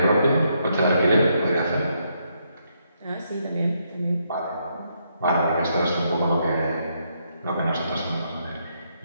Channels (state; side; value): inverted; both; correlation -0.76